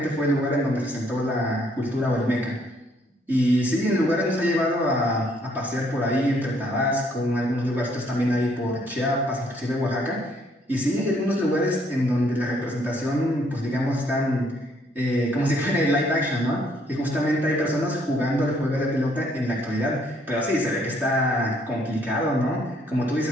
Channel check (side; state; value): both; normal; correlation 0.67